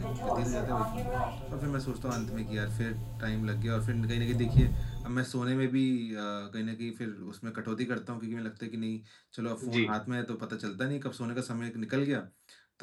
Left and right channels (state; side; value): identical; both; correlation 1.00